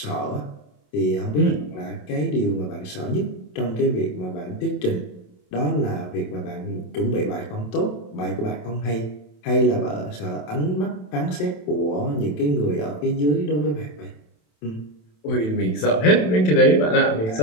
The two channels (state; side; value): late; right; 27 ms